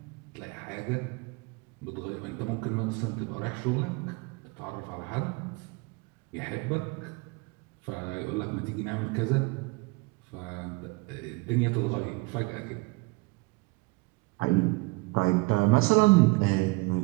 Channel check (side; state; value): left; quieter; 25.4 dB